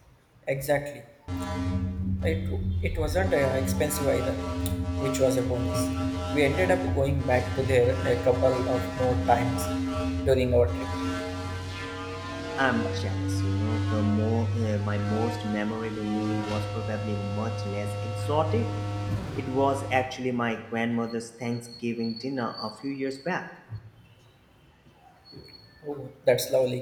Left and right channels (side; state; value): both; identical; correlation 1.00